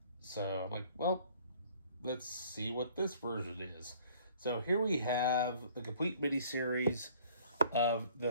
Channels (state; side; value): inverted; both; correlation -0.55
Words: So I'm like, well, let's see what this version is. So here we have the complete miniseries of